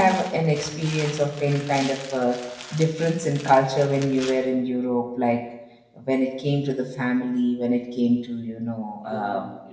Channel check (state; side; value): identical; both; correlation 1.00